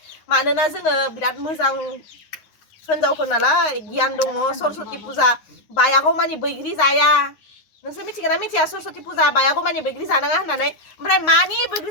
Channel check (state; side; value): late; right; 9.7 ms